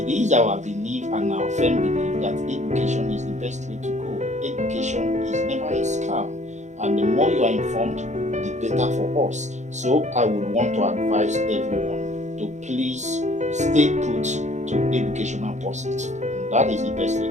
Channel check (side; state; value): left; late; 0.34 ms